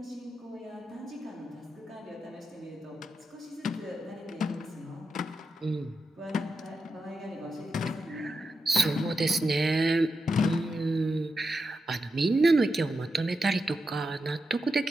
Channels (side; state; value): both; normal; correlation 0.88